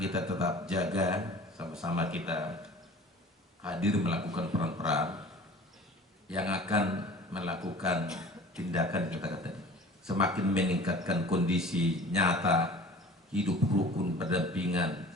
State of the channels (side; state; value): both; normal; correlation 0.43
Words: tetap jaga, sama-sama kita hadir melakukan peran-peran yang akan melakukan tindakan kita tadi. Semakin meningkatkan kondisi nyata hidup rukun berdampingan